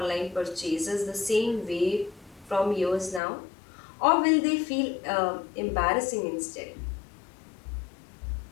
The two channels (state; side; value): drops out; right; at 3.2 s